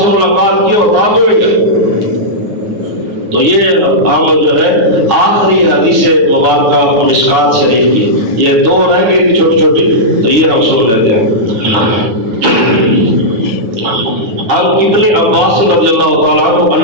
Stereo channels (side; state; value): left; late; 9.9 ms